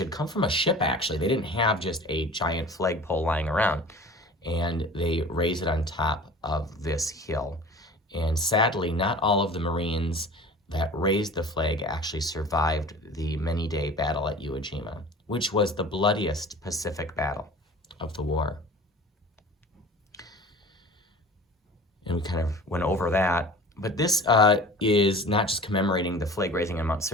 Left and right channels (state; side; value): normal; both; correlation 0.41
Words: come from a ship, actually. They didn't have just a giant flagpole lying around, and they raised it on top of this hill. And sadly, not all of the Marines that raised the flag actually survived the many-day battle at Iwo Jima, which was the bloodiest Pacific battle of the war. And we kind of went over that. But this is not just commemorating the flag raising on Mount